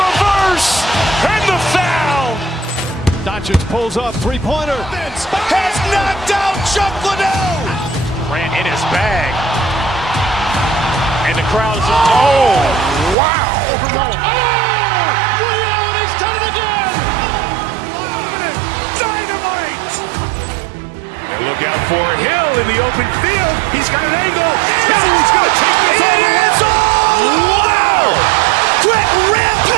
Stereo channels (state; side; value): drops out; left; at 13.2 s